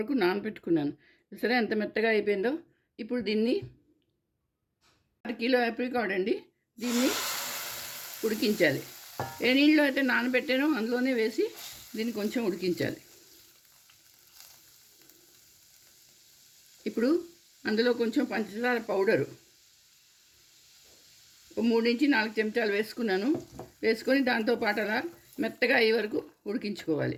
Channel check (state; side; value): identical; both; correlation 1.00